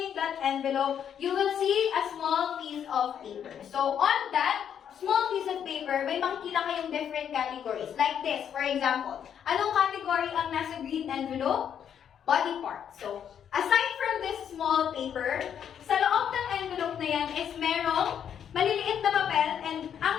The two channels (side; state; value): right; quieter; 8.7 dB